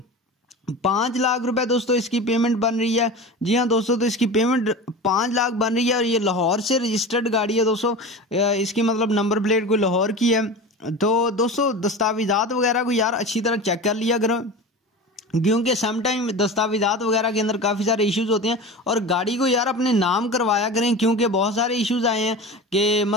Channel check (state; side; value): normal; both; correlation 0.31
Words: 5 लाख रुपए दोस्तों इसकी पेमेंट बन रही है। जी हाँ दोस्तों, तो इसकी पेमेंट 5 लाख बन रही है और ये लाहौर से रजिस्टर्ड गाड़ी है दोस्तों। इसकी मतलब नंबर प्लेट कोई लाहौर की है। तो दोस्तों दस्तावेज़ात वगैरह को यार अच्छी तरह चेक कर लिया करो, क्योंकि सम टाइम दस्तावेज़ात वगैरह के अंदर काफ़ी सारे इश्यूज होते हैं। और गाड़ी को यार अपने नाम करवाया करें, क्योंकि बहुत सारे इश्यूज आए हैं कि